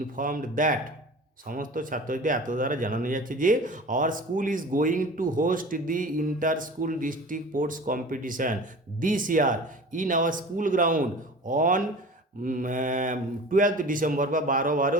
that, সমস্ত ছাত্রদের এত দ্বারা জানানো যাচ্ছে যে our school is going to host the inter school district sports competition this year in our school ground on 12 December বা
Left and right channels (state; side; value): normal; both; correlation 0.39